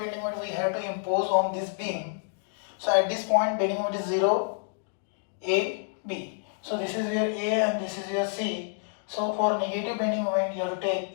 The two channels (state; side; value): silent; right; digital silence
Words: moment we have to impose on this beam. So at this point bending moment is 0, A, B. So this is your A and this is your C. So for negative bending moment you have